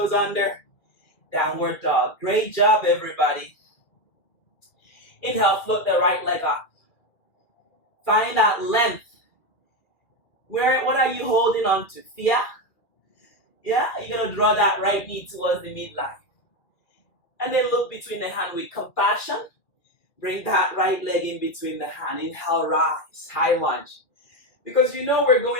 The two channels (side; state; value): right; late; 2.3 ms